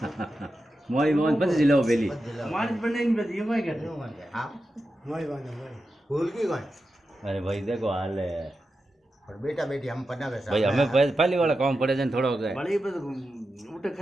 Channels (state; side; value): normal; both; correlation 0.90